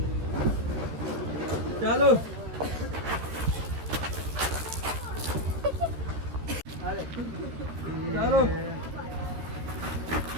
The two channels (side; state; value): left; late; 13 ms